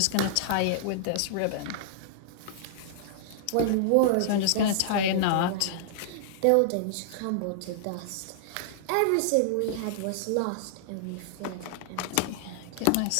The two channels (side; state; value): both; different; correlation -0.01